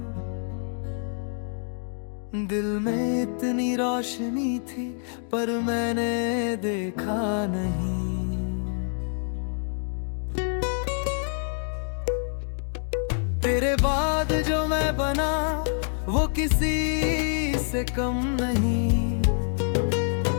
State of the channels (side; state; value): right; silent; 60 dB below the other